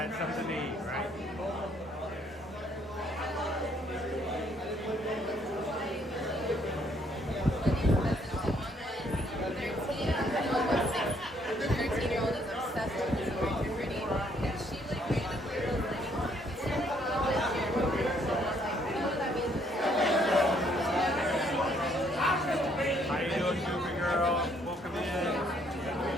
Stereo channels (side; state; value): both; normal; correlation 0.67